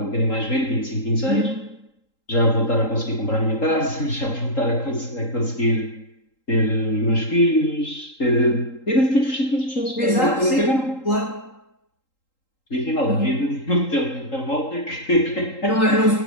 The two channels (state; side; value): late; right; 3.8 ms